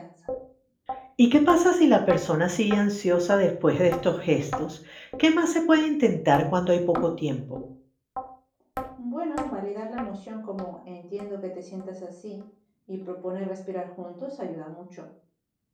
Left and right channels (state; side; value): identical; both; correlation 1.00